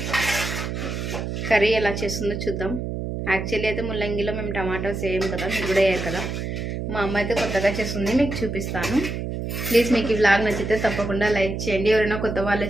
కర్రీ ఎలా చేస్తుందో చూద్దాం. యాక్చువల్లీ అయితే ముల్లంగిలో మేము టమాటోస్ వేయం కదా, మీరు కూడా వేయరు కదా. మా అమ్మ అయితే కొత్తగా చేస్తుంది, మీకు చూపిస్తాను. ప్లీజ్ మీకు ఈ వ్లాగ్ నచ్చితే తప్పకుండా లైక్ చేయండి. ఎవరైనా కొత్త వాళ్ళే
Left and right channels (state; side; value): noise; right; hum, 4 dB below the sound